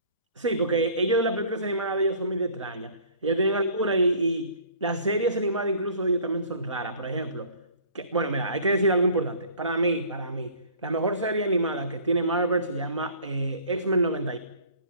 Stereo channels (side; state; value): both; inverted; correlation -0.51